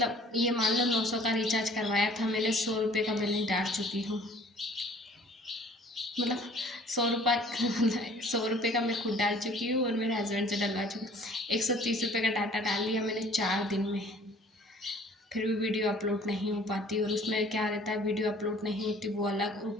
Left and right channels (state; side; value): normal; both; correlation 0.53